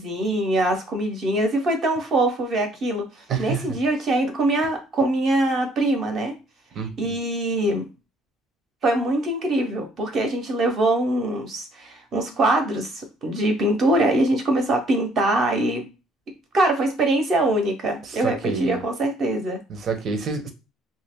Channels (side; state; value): both; normal; correlation 0.62